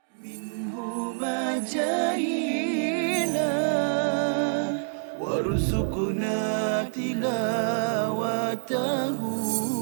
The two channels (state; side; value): silent; left; digital silence